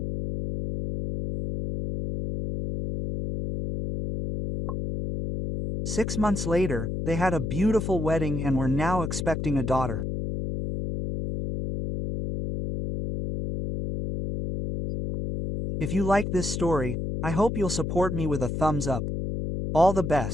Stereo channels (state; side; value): noise; left; hum, 3 dB below the sound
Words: Six months later, they had a beautiful wedding and were now expecting a daughter. If you like this story, I hope you'll support me with a thumbs up. All the